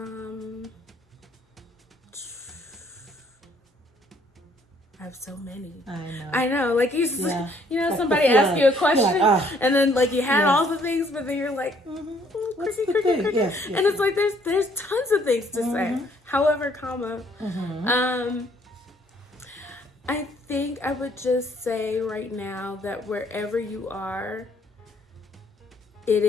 I have so many. I know. Like you know, somebody asks you a question, and then like you had all the things, but then you're like, cricket. Yes. And it's like there's tons of things to say. However, I think I would just say right now that wherever you are, it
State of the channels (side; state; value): both; normal; correlation 0.64